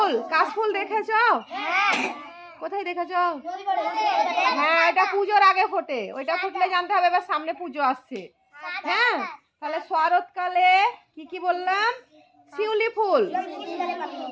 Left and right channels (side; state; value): both; identical; correlation 1.00